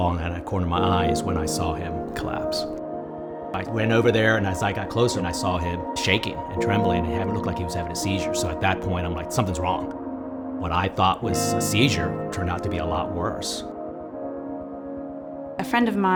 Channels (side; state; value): both; identical; correlation 1.00